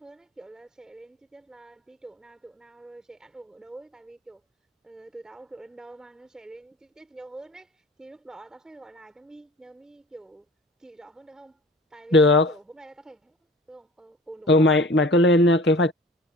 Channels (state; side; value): normal; both; correlation 0.43